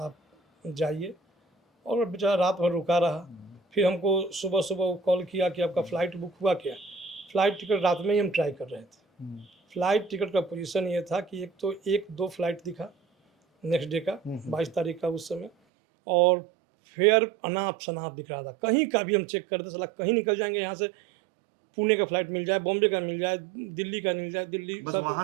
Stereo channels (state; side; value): drops out; left; at 15.5 s